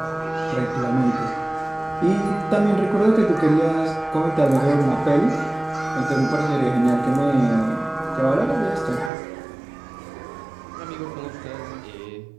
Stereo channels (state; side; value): drops out; left; at 9.1 s